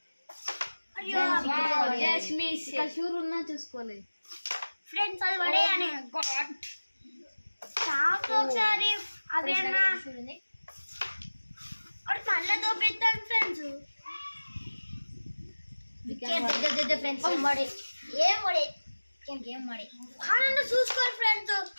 షూర్ ఉన్నా చూసుకోలేదు ఫ్రెండ్స్. అది పడేయని ఒకసారి అవి అన్నా మళ్ళీ దొబ్బేస్తాను ఫ్రెండ్స్. ఫ్రెండ్స్ ఏం పడే ఆనంద చూసుకోరు ఫ్రెండ్స్.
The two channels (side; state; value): both; inverted; correlation -1.00